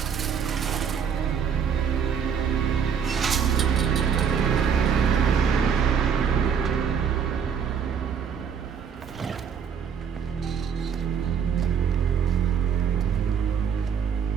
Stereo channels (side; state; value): left; quieter; 7.2 dB